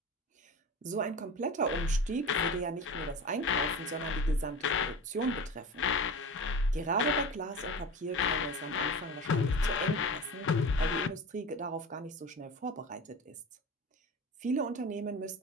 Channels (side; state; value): both; normal; correlation 0.32